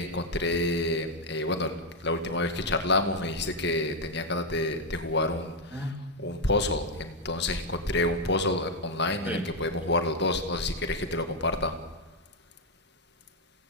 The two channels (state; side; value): normal; both; correlation 0.02